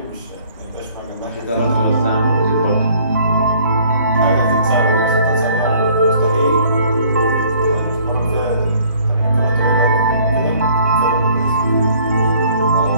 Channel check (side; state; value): both; inverted; correlation -0.57